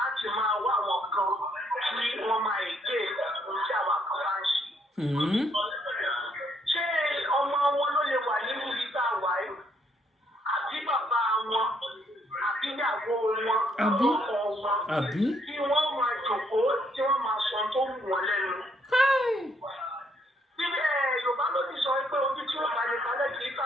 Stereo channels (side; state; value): both; normal; correlation 0.71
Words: máa wá àwọn kan tí wọ́n máa èké ohun tí àwa kan bá ń ṣe. ṣé ọmọ wọn ló lè wà nínú ibi tá a wà yìí àbí bàbá wọn àbí ìyàwó wọn ọkọ wọn tí wọ́n máa jòkóó tí wọ́n máa sọ tó wù wọ́n lẹ́nu. Bíbẹ̀ Yorùbá ló ti sọ pé ojú tí ó bá lè kalẹ̀ kì í